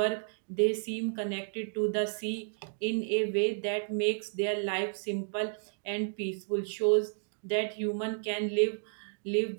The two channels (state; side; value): silent; left; digital silence